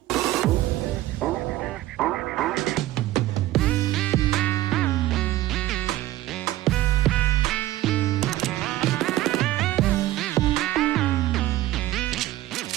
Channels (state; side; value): quieter; left; 15.6 dB